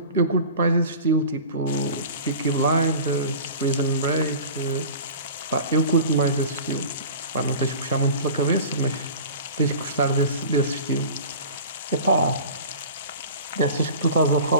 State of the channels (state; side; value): inverted; both; correlation -0.39